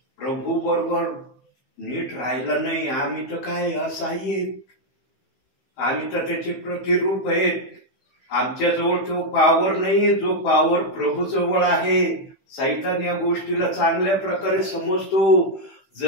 प्रभू बरोबर नीट राहिला नाही, आम्ही तर काय असहाय्य आहेत, आम्ही तर त्याचे प्रतिरूप आहेत. आमच्याजवळ तो पावर नाहीये जो पावर प्रभू जवळ आहे. सैतान या गोष्टीला चांगल्या प्रकारे समजतो.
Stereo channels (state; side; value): late; right; 15 ms